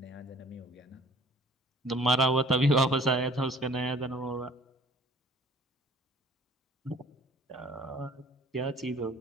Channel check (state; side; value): normal; both; correlation 0.53